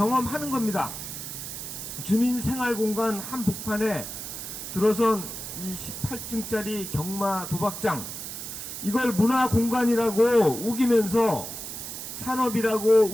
겁니다. 주민생활공간 한복판에 들어선 이 18층짜리 경마 도박장, 이걸 문화공간이라고 우기면서 산업이라고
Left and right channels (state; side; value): noise; right; hiss, 8 dB below the sound